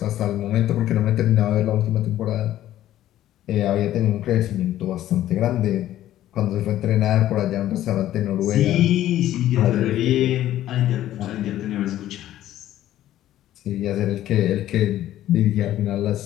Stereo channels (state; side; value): quieter; right; 13.2 dB